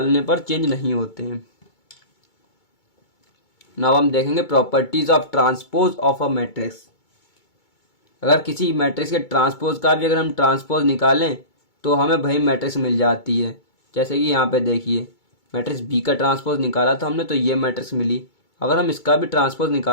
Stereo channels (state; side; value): late; right; 2.2 ms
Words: पर चेंज नहीं होते हैं। नाउ हम देखेंगे properties of transpose of a matrix. अगर किसी मैट्रिक्स के ट्रांसपोज का भी अगर हम ट्रांसपोज निकालें तो हमें वही मैट्रिक्स मिल जाती है। जैसे कि यहाँ पे देखिए, मैट्रिक्स बी का ट्रांसपोज निकाला था हमने तो ये मैट्रिक्स मिली। अगर हम इसका भी ट्रांसपोज